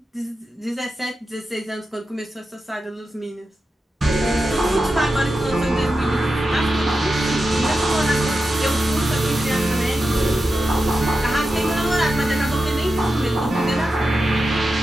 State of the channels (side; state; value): both; normal; correlation 0.90